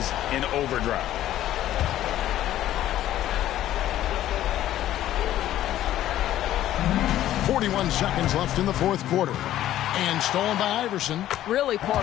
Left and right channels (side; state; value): right; quieter; 12.9 dB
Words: in overdrive. 41 seconds left in the 4th quarter. And stolen by Iverson. Really poor